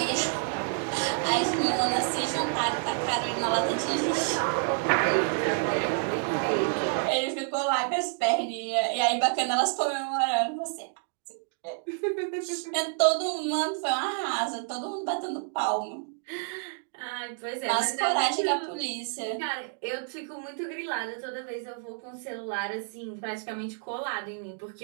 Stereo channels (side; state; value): left; silent; digital silence